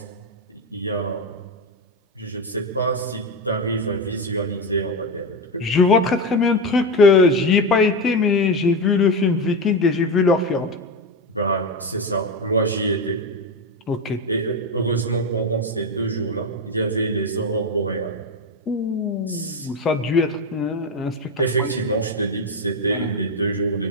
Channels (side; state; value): both; normal; correlation 0.14